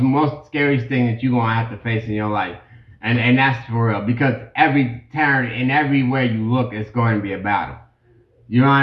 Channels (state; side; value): identical; both; correlation 1.00